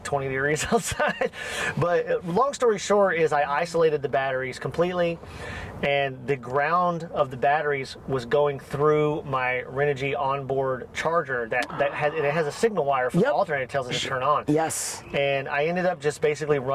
degrees outside. But long story short is I isolated the batteries completely, and the ground of the batteries was going through my Renogy onboard charger that has a signal wire for the alternator that tells it to turn on. Yes. And I ended up just basically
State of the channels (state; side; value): identical; both; correlation 1.00